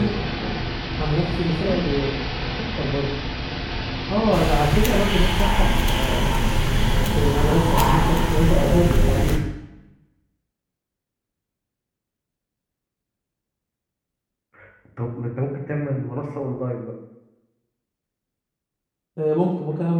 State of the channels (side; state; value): both; identical; correlation 1.00